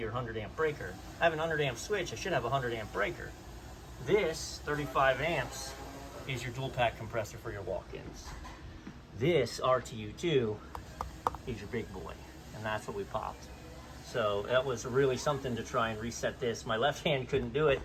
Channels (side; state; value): both; identical; correlation 1.00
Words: or 100 amp breaker. I have an 100 amp switch, I should have a 100 amp breaker. This 35 amps is your dual pack compressor for your walk-ins. This RTU2 is your big boy, and that's what we popped. So that was really something to try and reset this. My left hand couldn't do it,